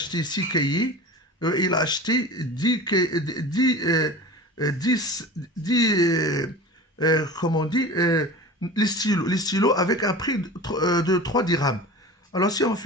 6 cahiers. Il a acheté 10 comment on dit, les stylos avec un prix de 3 dirhams. Alors si on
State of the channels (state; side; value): normal; both; correlation 0.35